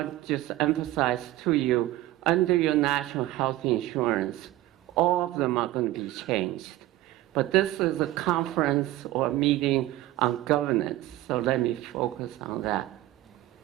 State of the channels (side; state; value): left; quieter; 16.1 dB